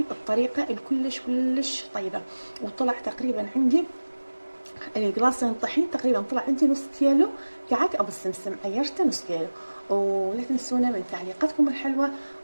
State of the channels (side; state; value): both; inverted; correlation -1.00